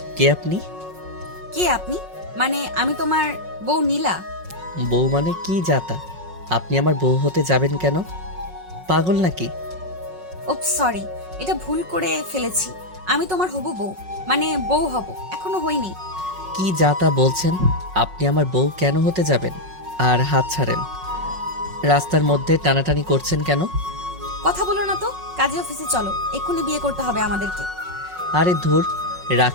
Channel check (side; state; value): left; late; 5.4 ms